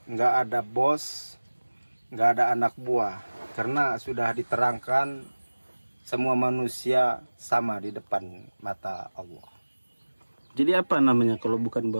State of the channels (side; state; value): both; inverted; correlation -1.00